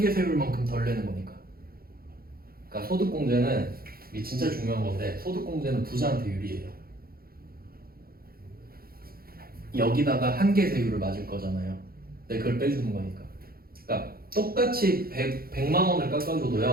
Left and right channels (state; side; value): late; left; 0.44 ms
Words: 세율만큼 덜 내는 거니까. 그러니까 소득공제는 이게 진짜 중요한 건데 소득공제는 부자한테 유리해요. 여기다가 한계 세율을 맞을 거잖아요. 근데 그걸 빼주는 거니까. 그러니까 똑같이 100만 원을